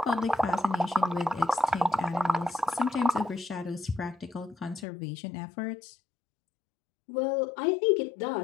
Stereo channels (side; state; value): right; drops out; at 4.9 s